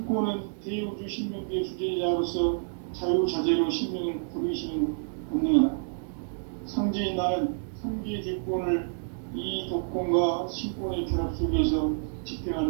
대우주 신명계의 주제자로서 자유자재로 신명을 부르시는 권능이다. 상제인 나는 3개의 대권을 이 독권과 신권의 결합 속에서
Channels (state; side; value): silent; left; digital silence